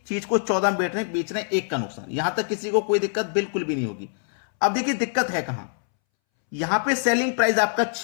चीज को 14 में बेच रहे हैं, 1 का नुकसान। यहां तक किसी को कोई दिक्कत बिल्कुल भी नहीं होगी। अब देखिए दिक्कत है कहां, यहां पे सेलिंग प्राइस आपका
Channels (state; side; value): silent; right; 62 dB below the other